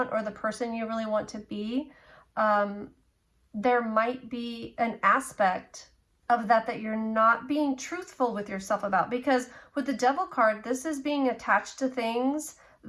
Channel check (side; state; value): both; identical; correlation 1.00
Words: or the person you really want to be. There might be an aspect of that you're not being truthful with yourself about, because with the Devil card, this is being attached to things